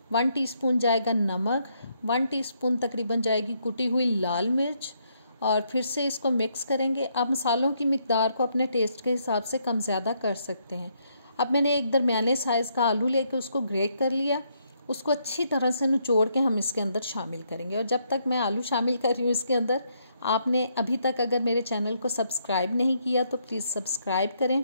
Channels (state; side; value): inverted; both; correlation -0.74